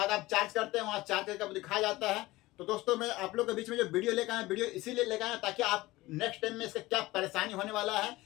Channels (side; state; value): right; quieter; 19.2 dB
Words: आप चार्ज करते हैं, वहां चार्ज करके दिखाया जाता है। तो दोस्तों मैं आप लोग के बीच में जो वीडियो लेकर आया, वीडियो इसीलिए लेकर आया ताकि आप नेक्स्ट टाइम में इसका क्या परेशानी होने वाला है